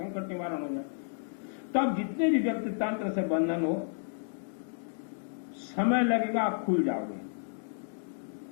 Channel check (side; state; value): right; silent; digital silence